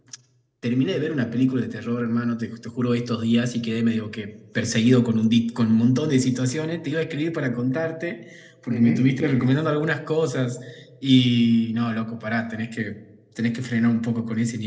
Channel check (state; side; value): identical; both; correlation 1.00